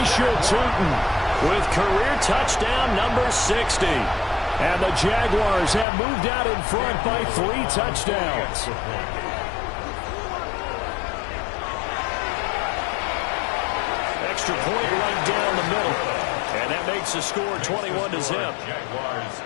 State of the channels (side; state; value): right; drops out; at 5.9 s